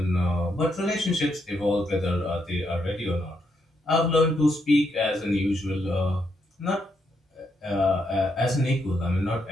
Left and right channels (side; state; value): both; normal; correlation 0.79